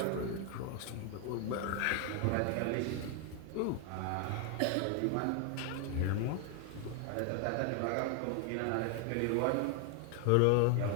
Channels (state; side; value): different; both; correlation 0.00